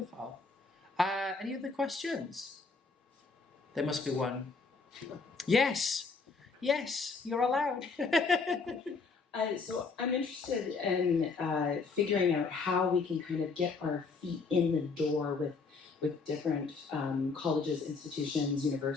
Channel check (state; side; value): quieter; right; 4.5 dB